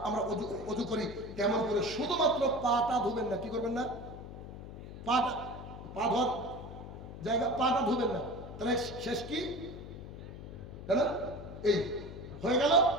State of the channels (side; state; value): left; noise; hum, 12 dB below the sound